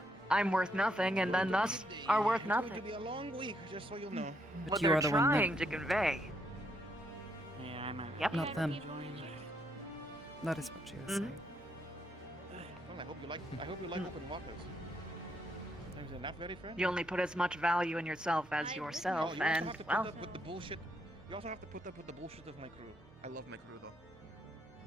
I'm worth nothing, and then thus are worth It's going to nothing. be a long week, just so you know. But What you they're are the one trying that... to convey. Yeah, I might. Yep. Not them. That is what she was Mhm. saying. Well, I hope you like open waters. Is it not very friend? You only put as much value in yourself as yourself, you also and have to put well. up with the bullshit. You also have to put up with the bullshit of my crew. I love my crew though.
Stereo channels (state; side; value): normal; both; correlation 0.75